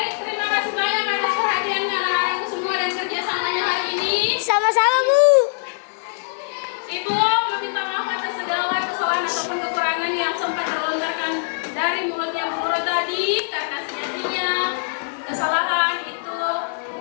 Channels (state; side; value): silent; right; digital silence